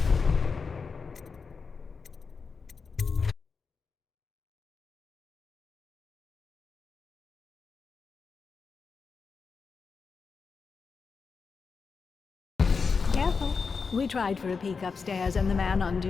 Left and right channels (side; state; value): right; quieter; 5.1 dB